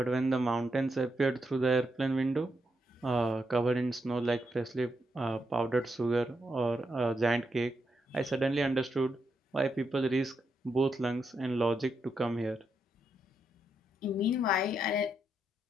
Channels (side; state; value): both; normal; correlation 0.82